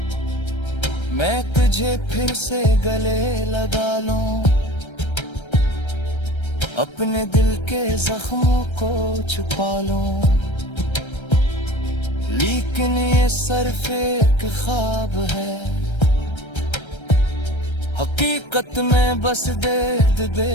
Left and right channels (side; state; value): right; late; 1.3 ms